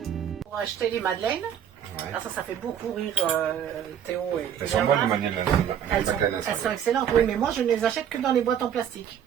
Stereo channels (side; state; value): left; quieter; 9.1 dB